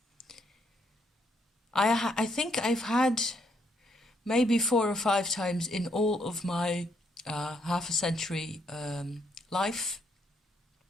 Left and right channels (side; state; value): both; normal; correlation 0.73